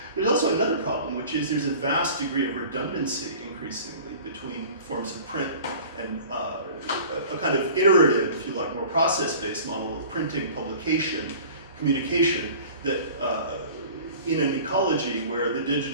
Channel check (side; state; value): both; inverted; correlation -0.43